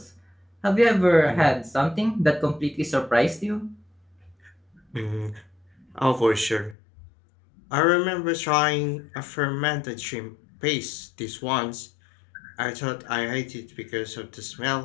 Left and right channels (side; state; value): right; drops out; at 6.8 s